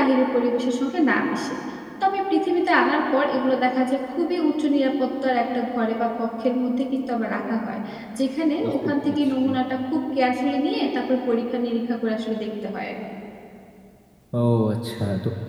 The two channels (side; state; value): both; identical; correlation 1.00